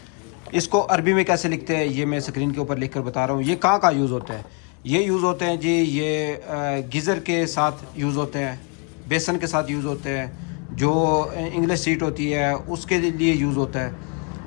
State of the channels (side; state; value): right; quieter; 36.9 dB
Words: اس کو عربی میں کیسے لکھتے ہیں یہ میں اسکرین کے اوپر لکھ کر بتا رہا ہوں. یہ کہاں یوز ہوتا ہے, یہ یوز ہوتے ہیں جی یہ گیزر کے ساتھ یوز ہوتے ہیں, بیسن کے ساتھ یوز ہوتے ہیں, جو انگلش سیٹ ہوتی ہے اس کے لیے یوز ہوتا ہے.